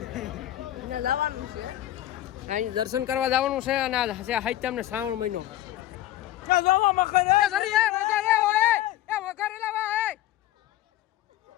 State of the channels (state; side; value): quieter; right; 14.0 dB